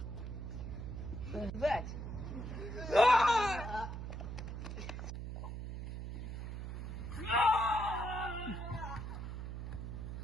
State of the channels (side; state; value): right; noise; hum, 6 dB below the sound